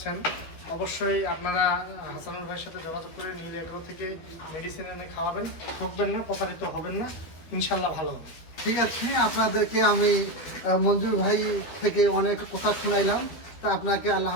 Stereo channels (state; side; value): late; right; 12 ms